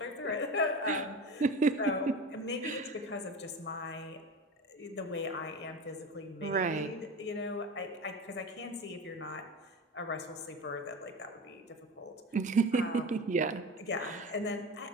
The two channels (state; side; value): normal; both; correlation 0.29